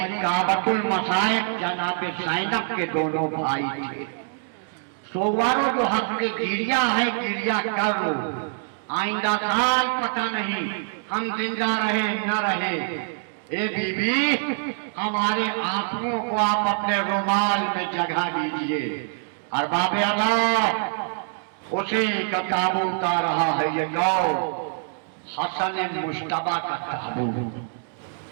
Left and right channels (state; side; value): silent; left; digital silence